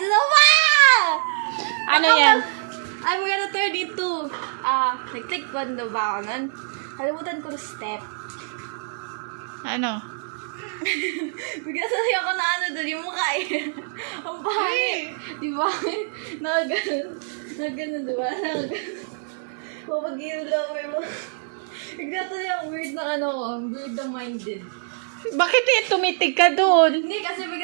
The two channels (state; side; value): silent; left; digital silence